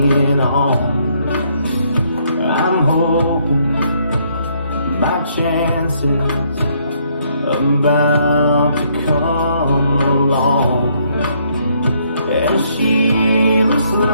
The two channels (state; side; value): inverted; both; correlation -0.70